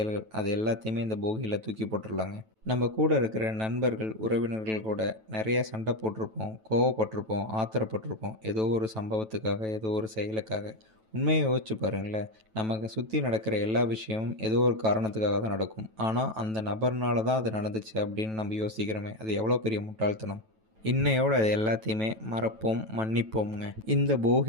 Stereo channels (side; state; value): left; late; 9.2 ms